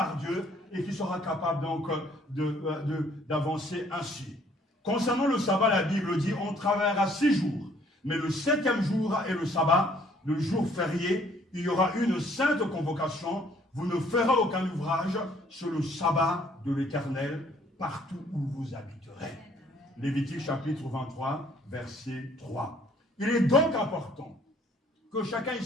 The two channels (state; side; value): normal; both; correlation 0.61